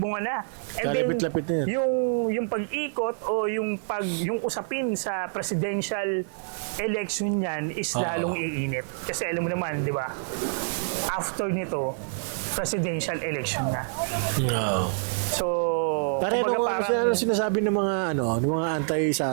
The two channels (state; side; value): silent; left; 60 dB below the other